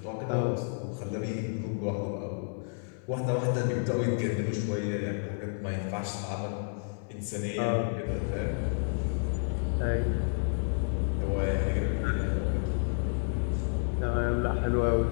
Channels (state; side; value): silent; right; 57 dB below the other